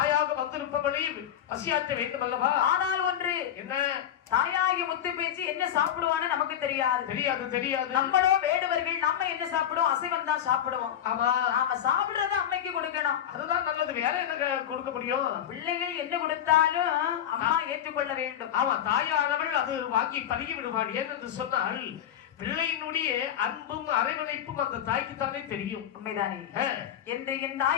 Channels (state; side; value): quieter; right; 10.2 dB